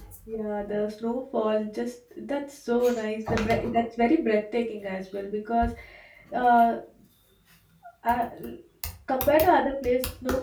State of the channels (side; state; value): both; identical; correlation 1.00